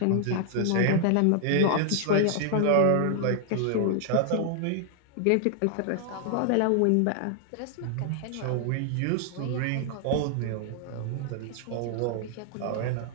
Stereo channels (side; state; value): both; different; correlation 0.00